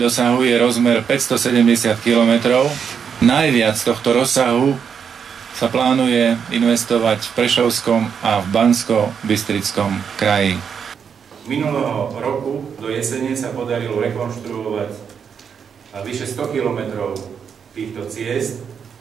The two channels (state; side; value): quieter; left; 7.0 dB